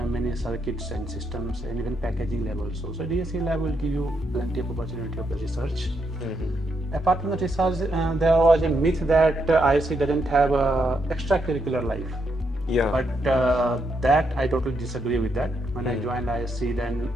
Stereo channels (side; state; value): both; normal; correlation 0.79